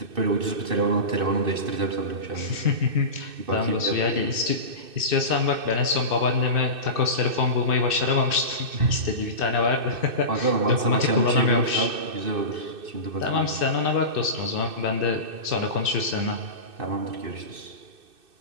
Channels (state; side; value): late; left; 2.6 ms